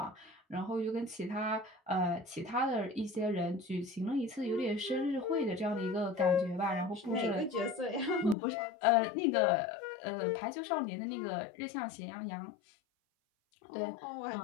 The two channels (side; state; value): right; drops out; at 8.3 s